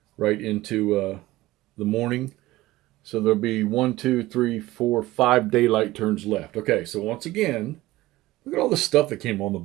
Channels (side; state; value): left; quieter; 17.8 dB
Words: right into the morning. So there'll be 5 daylight turns left. Okay, so once again, look at all the stuff that came on the